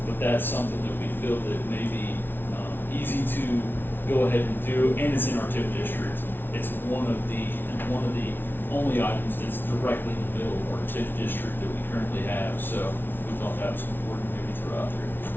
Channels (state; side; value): late; right; 0.10 ms